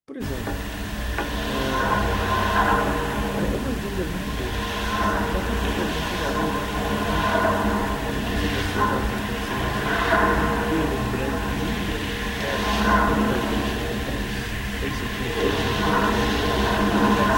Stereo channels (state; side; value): identical; both; correlation 1.00